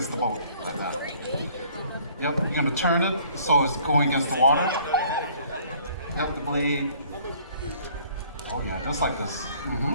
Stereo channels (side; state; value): both; inverted; correlation -0.57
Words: the boat, like that. Yep, you're gonna turn it so it's going against the water. Yep, the blade. Oh yeah, just like this.